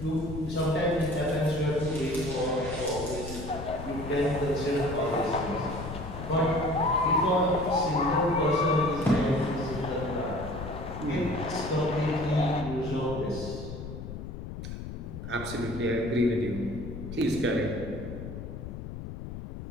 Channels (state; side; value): noise; left; rumble, 9 dB below the sound